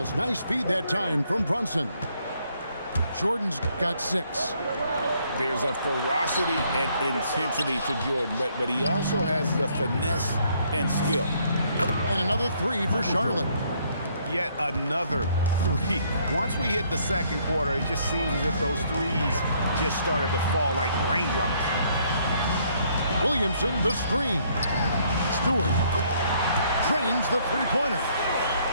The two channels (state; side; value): inverted; both; correlation -0.67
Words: Nice feed that time from Brunson. Jordan's got 6. There's a ferocity and intensity to Jordan, but he also has the finesse and skill. And another 3 for Charlotte. Yet another 3. Once we hit the second quarter, it just seems as if those threes just started to fall like raindrops. Williamson, the screen. Stewart trains the three-pointer.